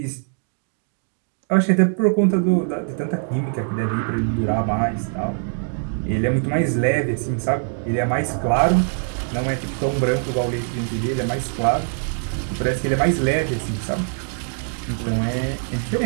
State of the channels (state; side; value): silent; left; 64 dB below the other